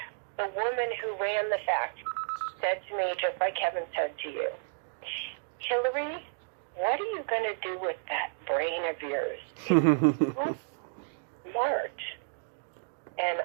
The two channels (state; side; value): silent; left; digital silence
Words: the woman who ran the factory said to me, just like Kevin said to you, Hilary, what are you going to do with that brain of yours? It's smart. And